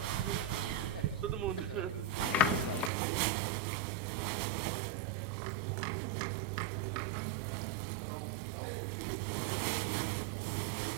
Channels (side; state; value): left; drops out; at 2.9 s